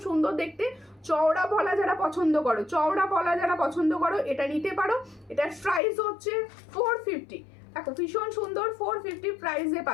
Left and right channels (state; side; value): drops out; right; at 5.8 s